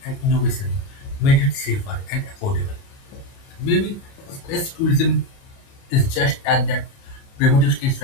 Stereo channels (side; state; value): right; late; 29 ms